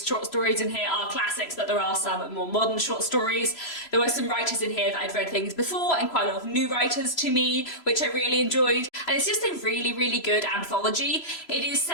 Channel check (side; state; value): right; late; 3.0 ms